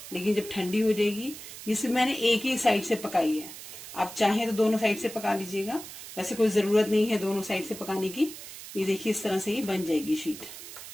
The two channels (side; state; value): right; noise; hiss, 13 dB below the sound